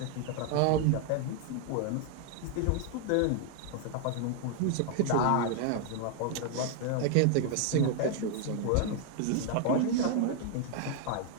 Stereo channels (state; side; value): different; both; correlation 0.00